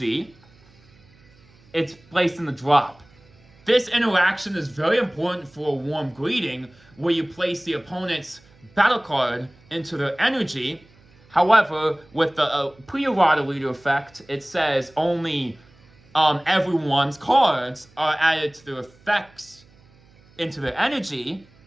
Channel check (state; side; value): noise; right; hum, 29 dB below the sound